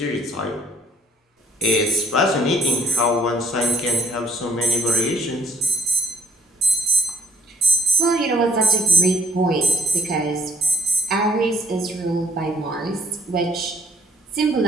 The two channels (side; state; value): both; normal; correlation 0.63